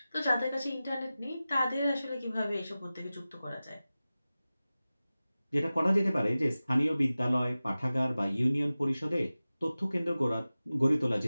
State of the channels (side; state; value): both; inverted; correlation -0.96